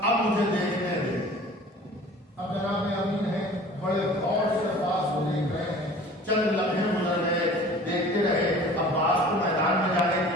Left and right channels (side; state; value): both; normal; correlation 0.45